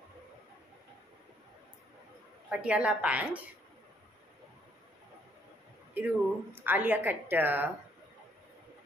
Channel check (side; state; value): both; normal; correlation 0.68